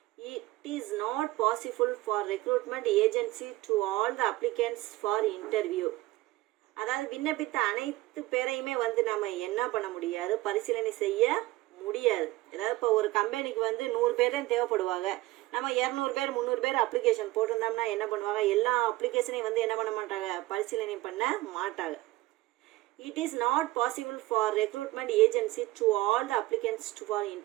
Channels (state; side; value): quieter; left; 18.5 dB